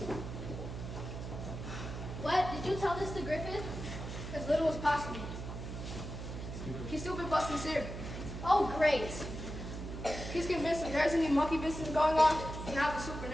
What? Did you tell this to Griffith? As little as possible. He's stupid but sincere. Oh, great. He's convinced if there's any monkey business going on, it's not the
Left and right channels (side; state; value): right; noise; hum, 8 dB below the sound